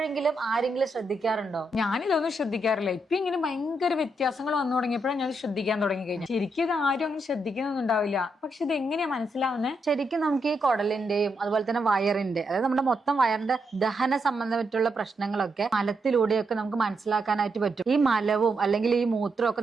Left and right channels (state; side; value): normal; both; correlation 0.81